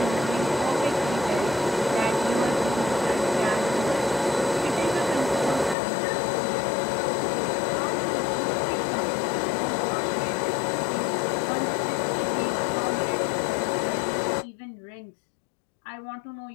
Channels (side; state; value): right; drops out; at 5.8 s